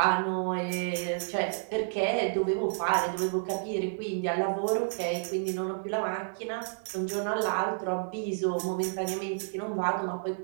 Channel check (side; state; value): left; silent; digital silence